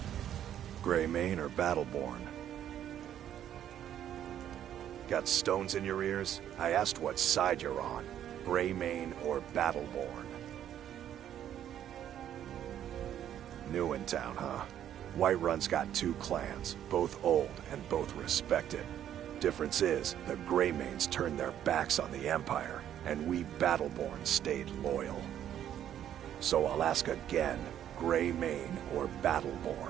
Greymane or Battleborn? Got stones in your ears? I asked what side you're on. Greymane or Battleborn? New in town, huh? Whiterun's got two clans, both old and both respected. Difference is, the Greymanes turned their backs on the Empire, and we Battleborn stayed loyal. So I'll ask again, Greymane or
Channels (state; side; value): quieter; left; 10.6 dB